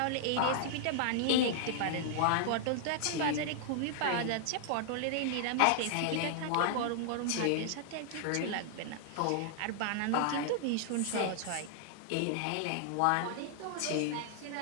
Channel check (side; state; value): both; different; correlation -0.01